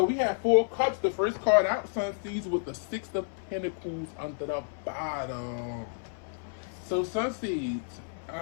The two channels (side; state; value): right; silent; 58 dB below the other